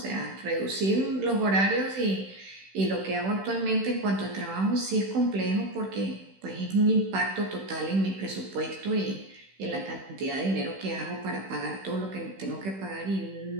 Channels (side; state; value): left; late; 16 ms